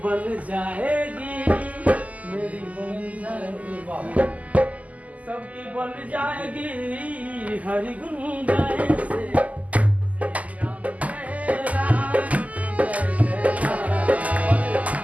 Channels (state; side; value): late; left; 0.074 ms